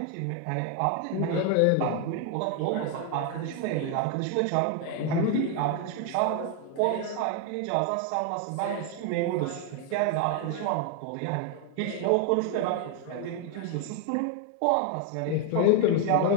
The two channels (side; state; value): both; different; correlation 0.01